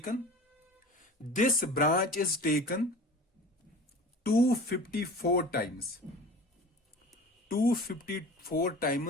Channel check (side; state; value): both; normal; correlation 0.39